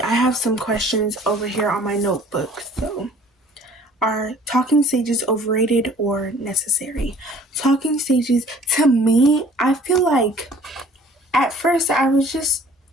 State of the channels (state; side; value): normal; both; correlation 0.52